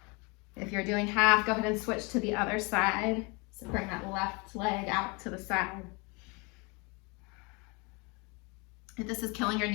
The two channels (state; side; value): quieter; right; 29.2 dB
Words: If you're doing half, go ahead and switch to the other side. So bring that left leg out to the side. If this is killing your